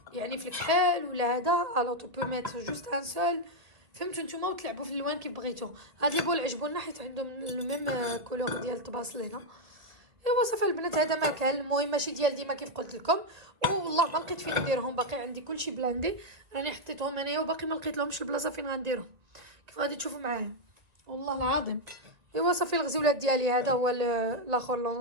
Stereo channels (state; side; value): late; left; 2.3 ms